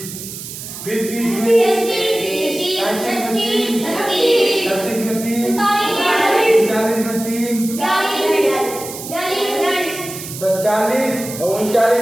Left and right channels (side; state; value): right; noise; hiss, 10 dB below the sound